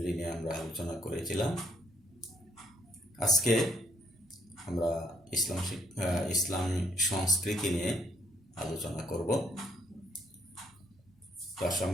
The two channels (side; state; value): both; normal; correlation 0.69